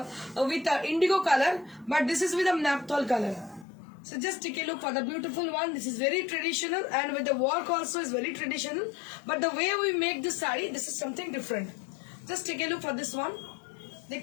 with Indigo colour, but this is with a naphthol colour. So just take a look for the beautiful one. This is very traditional and with the work also is very traditional. But the way we make this sari, this is something different. Just take a look for this one.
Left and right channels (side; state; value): right; drops out; at 3.7 s